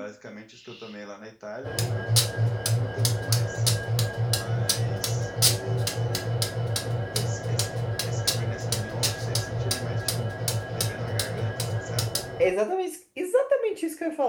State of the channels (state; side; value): identical; both; correlation 1.00